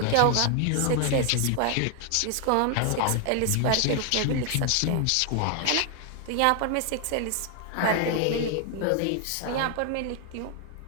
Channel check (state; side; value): different; both; correlation 0.00